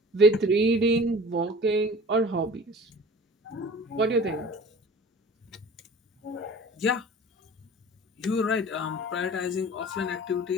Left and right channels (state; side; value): normal; both; correlation 0.43